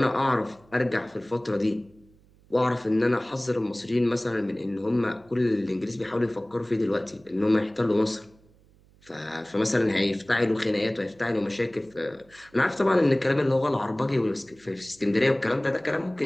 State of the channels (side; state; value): right; noise; hum, 29 dB below the sound